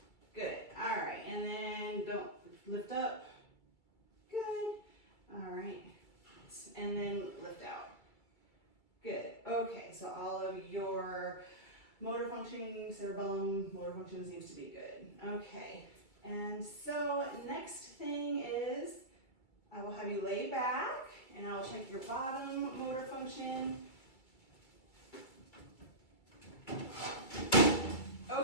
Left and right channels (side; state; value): right; late; 2.3 ms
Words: Good, all right, and then don't lift up, good, all right, and then lift out. Good, okay, so all of your motor functioning, cerebellum, motor function seems to be good. Okay, and so next thing is I will have you lay back and I'll check your bottom motor function.